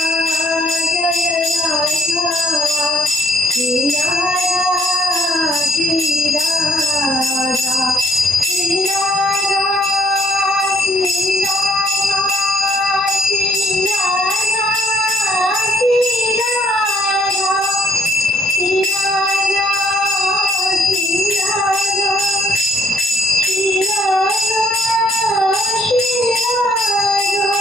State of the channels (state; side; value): normal; both; correlation 0.66